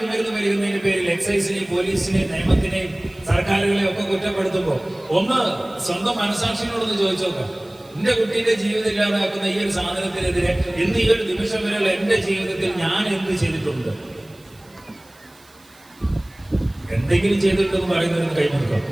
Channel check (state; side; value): noise; right; hiss, 28 dB below the sound